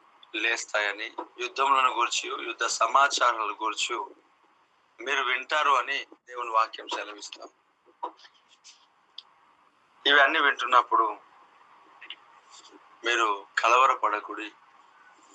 లేస్తాయని, యుద్ధములను గురించి, యుద్ధ సమాచారాల గురించి మీరు వింటారు అని దేవుని వాక్యం సెలవిస్తాం. ఇవన్నీ వింటున్నప్పుడు మీరు కలవరపడకుడి.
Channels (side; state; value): both; identical; correlation 1.00